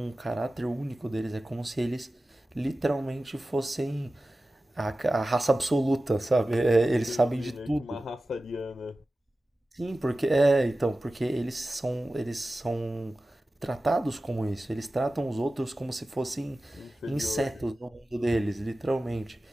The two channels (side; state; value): both; normal; correlation 0.95